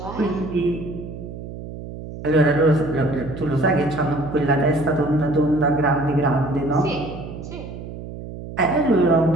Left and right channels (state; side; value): noise; right; hum, 11 dB below the sound